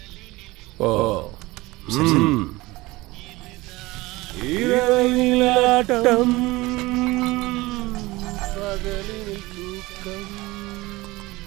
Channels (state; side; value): quieter; left; 20.8 dB